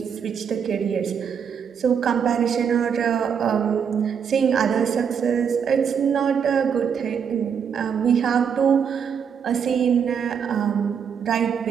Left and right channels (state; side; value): quieter; left; 7.3 dB